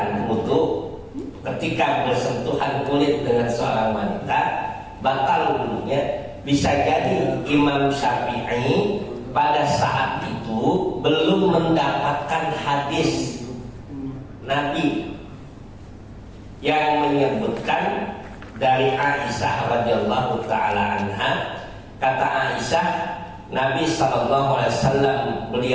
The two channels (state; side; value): identical; both; correlation 1.00